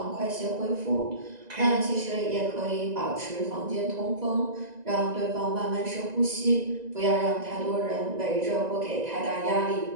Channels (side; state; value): left; late; 1.9 ms